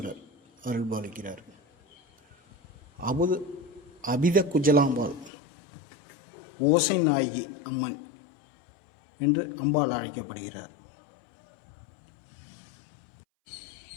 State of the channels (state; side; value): drops out; right; at 5.3 s